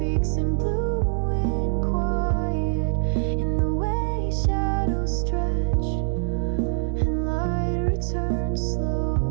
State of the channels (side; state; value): left; silent; 59 dB below the other